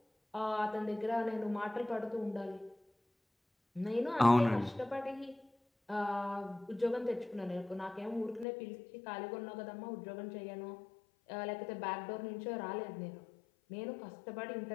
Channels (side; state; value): right; drops out; at 8.5 s